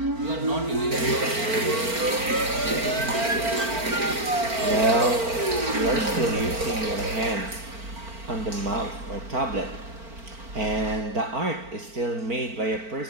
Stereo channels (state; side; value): late; left; 4.4 ms